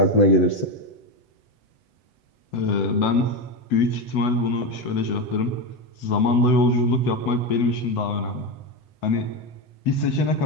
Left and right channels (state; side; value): late; right; 8.0 ms